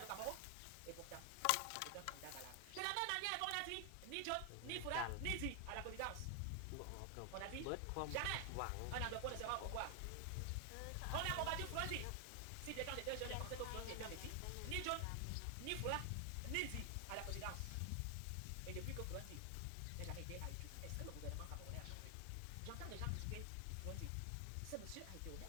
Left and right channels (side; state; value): both; different; correlation 0.00